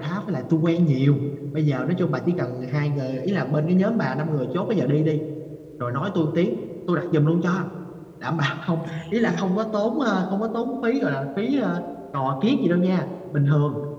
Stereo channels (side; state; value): both; identical; correlation 1.00